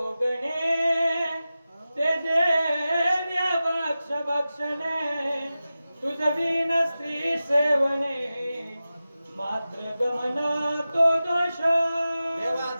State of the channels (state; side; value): inverted; both; correlation -0.94